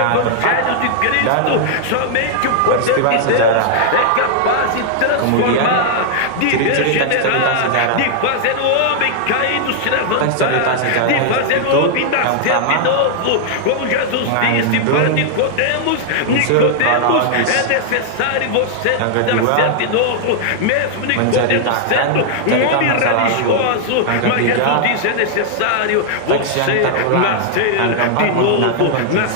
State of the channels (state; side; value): different; both; correlation -0.01